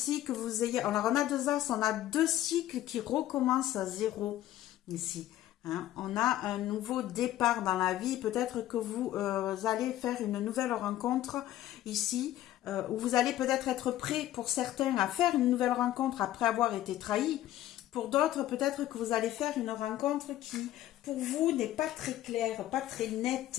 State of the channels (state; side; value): quieter; right; 13.7 dB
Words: que vous ayez... Alors, on a 2 as, on a 2 cycles qui recommencent à zéro ici. Hein. On a un nouveau départ dans la vie. Peut-être que vous allez faire une nouvelle rencontre ici, où vous allez peut-être être prêt pour certains à faire une nouvelle rencontre après avoir été trahi. Pour d'autres, peut-être que vous allez faire une rencontre qui, pour vous, n'est pas très claire, pas très nette.